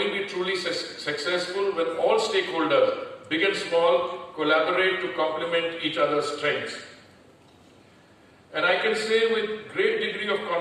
be truly successful when all stakeholders, big and small, collaborate to complement each other's strengths. And I can say with great degree of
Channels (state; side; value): identical; both; correlation 1.00